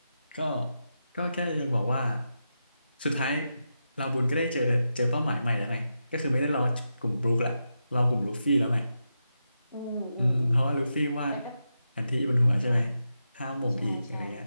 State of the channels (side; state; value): both; inverted; correlation -0.88